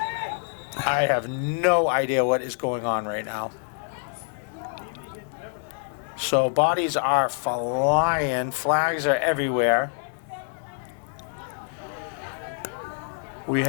I have no idea what is going on right now. So bodies are flying, flags are everywhere. We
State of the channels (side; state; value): right; silent; 61 dB below the other